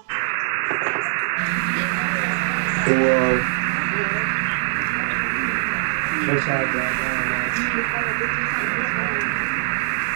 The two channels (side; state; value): left; silent; digital silence